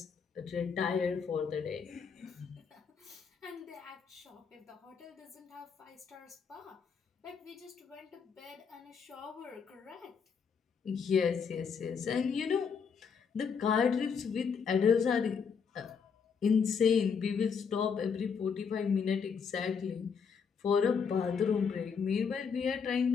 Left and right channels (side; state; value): right; quieter; 6.2 dB